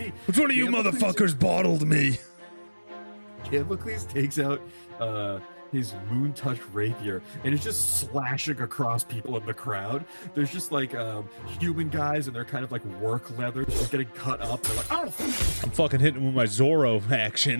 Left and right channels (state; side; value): inverted; both; correlation -1.00